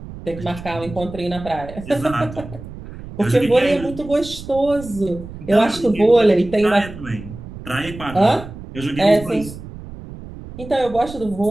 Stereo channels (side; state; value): right; noise; rumble, 13 dB below the sound